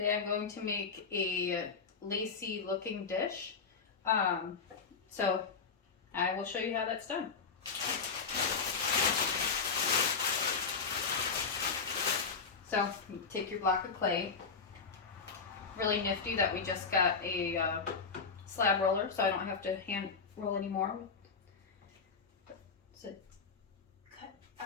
I'm going to make a lacy looking dish. Um, so I will show you how that's done. So you take your block of clay. Really nifty that we just got a slab roller, so I don't have to hand roll anymore. So cut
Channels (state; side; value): quieter; right; 5.3 dB